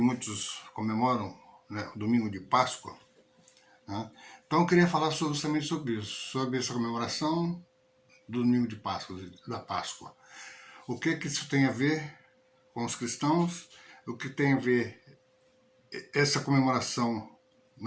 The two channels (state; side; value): identical; both; correlation 1.00